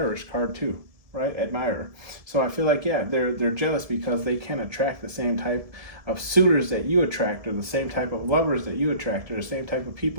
card too, right? Admirer. So I feel like, yeah, they're jealous because they can attract the same type of suitors that you attract, or the same type of lovers that you attract, or the same type of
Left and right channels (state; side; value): late; left; 1.7 ms